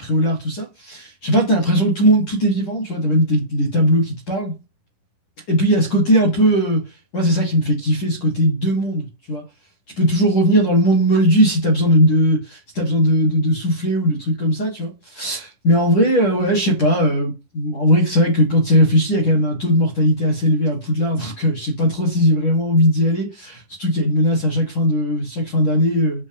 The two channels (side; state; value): right; late; 10 ms